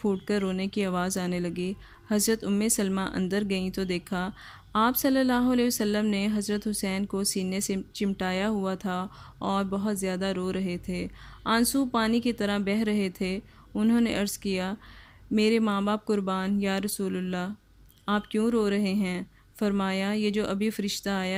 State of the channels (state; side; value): identical; both; correlation 1.00